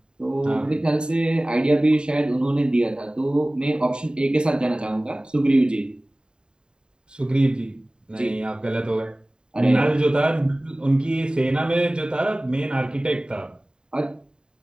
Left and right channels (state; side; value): late; left; 0.049 ms